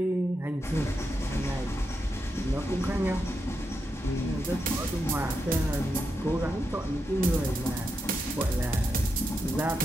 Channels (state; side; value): normal; both; correlation 0.85